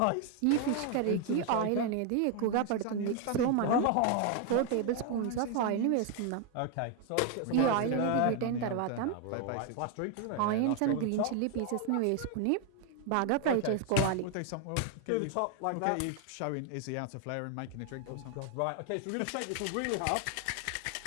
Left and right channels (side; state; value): both; different; correlation 0.00